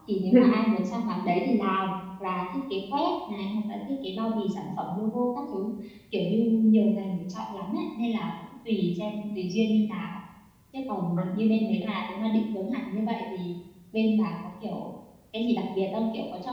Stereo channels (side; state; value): both; identical; correlation 1.00